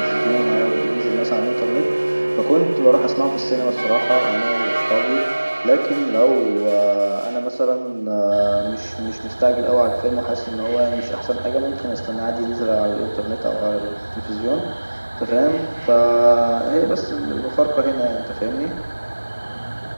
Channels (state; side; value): inverted; both; correlation -1.00